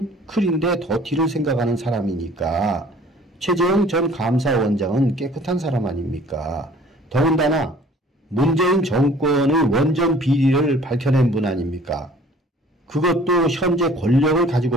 클인데 더티를 생각하는 사람이니까 최재형 전 감사원장은 깨끗한 사람 아닙니까? 더군다나 문재인 정권의 원전 비리를 밝혀낸 분 아닙니까? 그것도 현재 권력을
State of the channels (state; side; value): normal; both; correlation 0.52